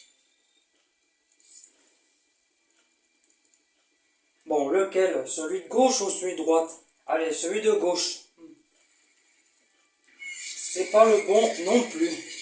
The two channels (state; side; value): identical; both; correlation 1.00